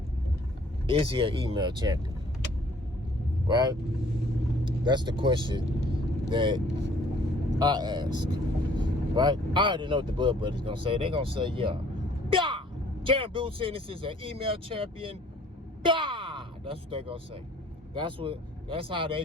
Is he an email champion? Right? That's the question that I ask. Right? I already know what the Bud Buddies gonna say. They gonna say, yeah. Jaron Enis is an email champion. That's what they gonna say. That's how they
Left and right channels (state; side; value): normal; both; correlation 0.58